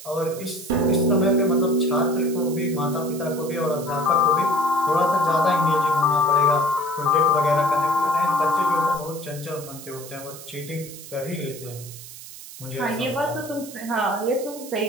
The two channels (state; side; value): noise; right; hiss, 15 dB below the sound